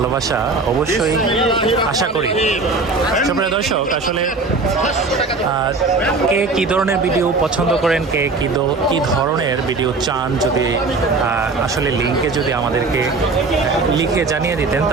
অবশ্যই আশা করি। সুপ্রিয় দর্শক, আসলে কে কী ধরনের ভিডিও পছন্দ করেন, কে কী ধরনের ভিডিও চান, যদি আসলে লিঙ্কে যদি আমাদেরকে লিখে জানিয়ে দিতেন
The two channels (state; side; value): quieter; left; 3.8 dB